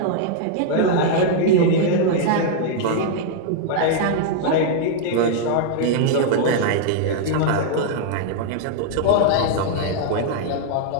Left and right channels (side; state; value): both; different; correlation -0.01